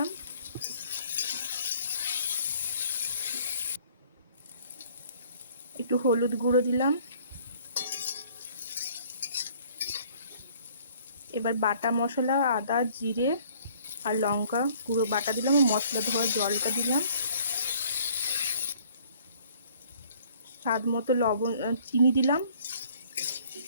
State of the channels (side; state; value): both; inverted; correlation -0.58